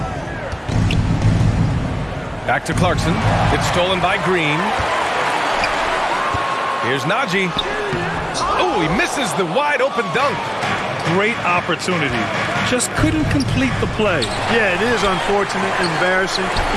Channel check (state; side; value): identical; both; correlation 1.00